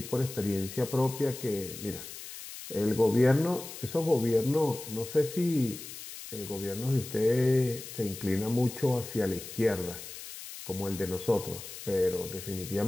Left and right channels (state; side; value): noise; left; hiss, 12 dB below the sound